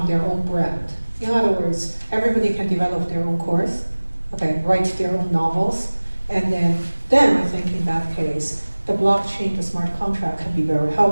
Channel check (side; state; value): both; inverted; correlation -1.00